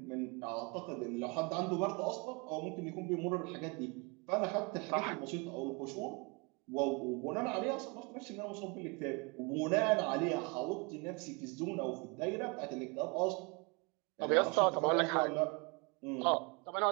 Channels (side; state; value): left; quieter; 29.7 dB